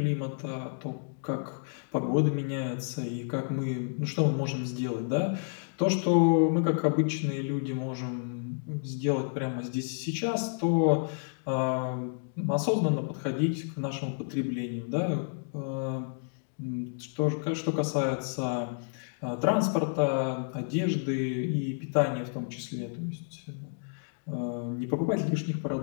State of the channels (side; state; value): right; silent; digital silence